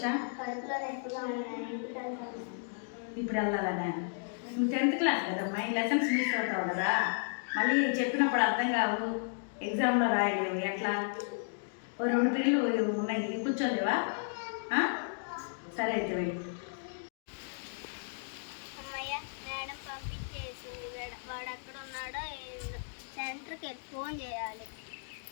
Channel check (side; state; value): right; silent; digital silence